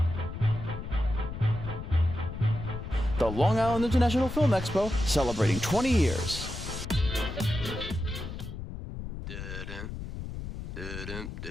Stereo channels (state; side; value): noise; left; rumble, 8 dB below the sound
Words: The Long Island International Film Expo, celebrating 20 years.